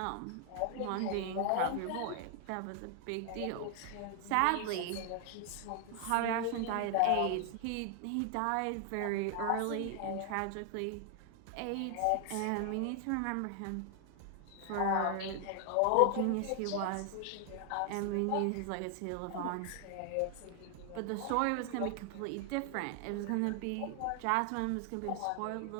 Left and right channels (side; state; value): both; different; correlation 0.00